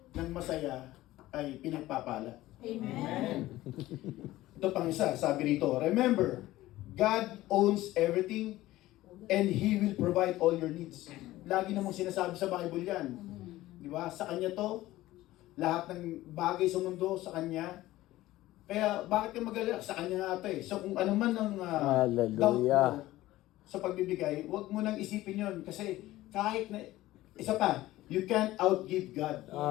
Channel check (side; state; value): right; quieter; 16.5 dB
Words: ng masaya ay pinagpapala. Amen. Ito pang isa, sabi rito, remember, God owns everything and He will provide all your needs. Lagi namang sinasabi sa Bible yan. Di ba? Sa Kanya to, lahat ng bagay sa mundo sa Kanya. Kaya bakit ka mag-alala? Sa Kanya nga ito eh. So kung ano man ang doubt Hallelujah. mo sa pagbibigay, huwag mo nang isipin yon kasi kahit na, isa pa, you can't outgive God.